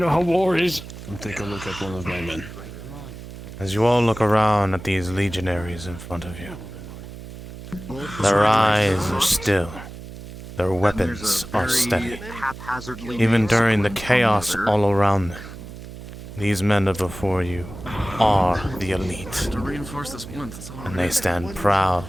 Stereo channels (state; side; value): noise; right; hum, 13 dB below the sound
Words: how war is. I'll take a look at one of my men. As you all look around at these legionaries in front of you, their eyes are still. Their weapons are steady. Even during the chaos all around them, these men are before you are the elite. To reinforce this plinth, that's all. And they stand proud,